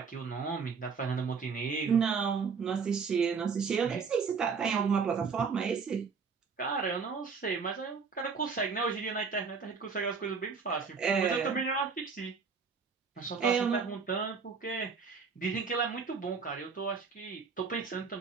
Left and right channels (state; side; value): quieter; left; 5.4 dB